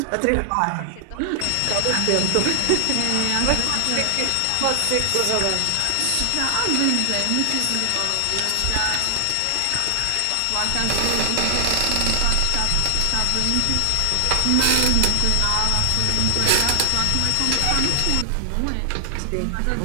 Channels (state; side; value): different; both; correlation 0.00